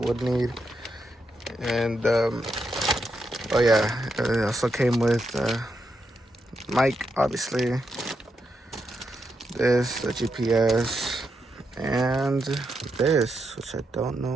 need. And oh yeah, it also came with mic, obviously. This, the GPS, and this, which I don't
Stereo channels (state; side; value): normal; both; correlation 0.83